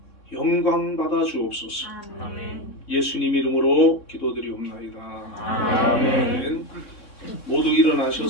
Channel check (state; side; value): late; right; 3.6 ms